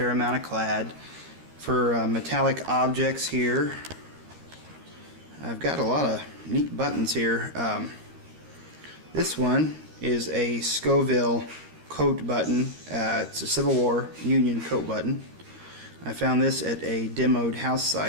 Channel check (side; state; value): left; late; 13 ms